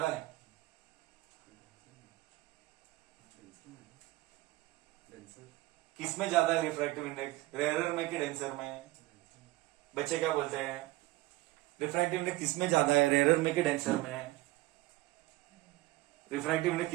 है. किसमें ज्यादा है रिफ्रैक्टिव इंडेक्स? रेरर में कि डेंसर में? बच्चे क्या बोलते हैं? रिफ्रैक्टिव इंडेक्स किसमें ज्यादा है? रेरर में कि डेंसर में? रिफ्रैक्टिव इंडेक्स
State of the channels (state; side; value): quieter; left; 19.1 dB